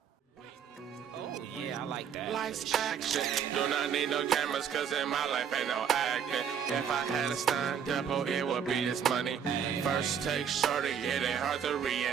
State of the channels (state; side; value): quieter; left; 7.8 dB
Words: Oh, yeah, I like that. Life's action. Do not need no cameras, cause in my life ain't no acting. If I had a stunt double, it would be this money. First take shorty, it ain't hard to